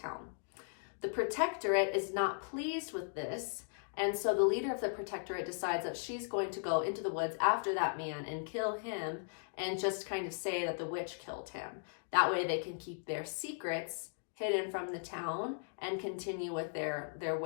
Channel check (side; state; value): right; silent; digital silence